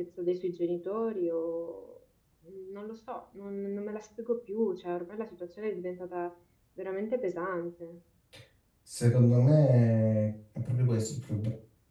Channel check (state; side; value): identical; both; correlation 1.00